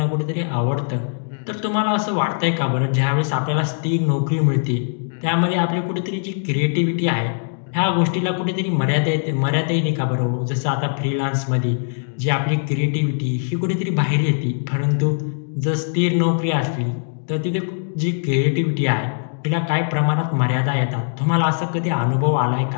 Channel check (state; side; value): silent; right; digital silence